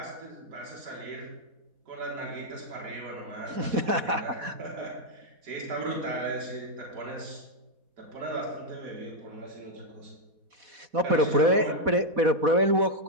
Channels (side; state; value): left; late; 4.1 ms